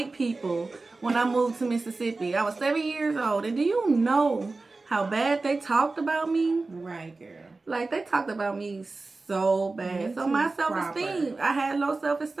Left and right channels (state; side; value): quieter; left; 3.6 dB